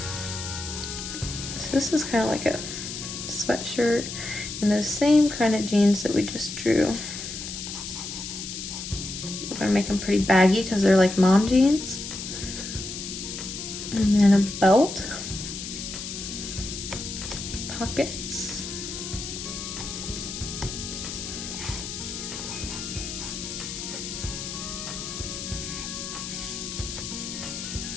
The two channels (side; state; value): left; noise; hiss, 7 dB below the sound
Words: So this is kind of like a sweatshirt and those same kind of jeans that we just drew. We're gonna make them pretty baggy because they're like mom jeans. And then a belt, pockets,